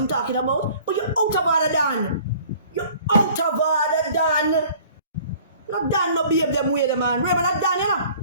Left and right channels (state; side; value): inverted; both; correlation -0.51